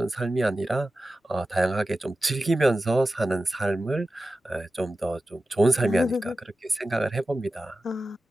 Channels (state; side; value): normal; both; correlation 0.94